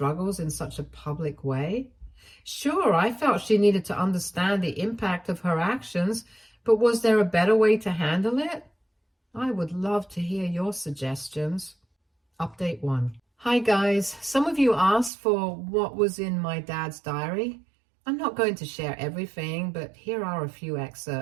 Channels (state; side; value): drops out; left; at 15.1 s